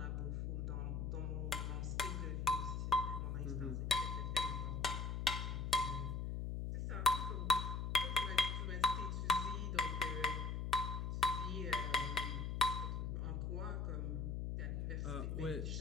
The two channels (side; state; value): left; noise; hum, 1 dB below the sound